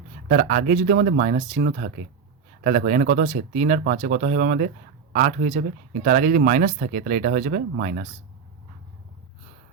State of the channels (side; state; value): left; quieter; 6.1 dB